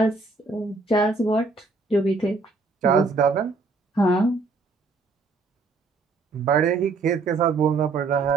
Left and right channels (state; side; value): quieter; left; 3.9 dB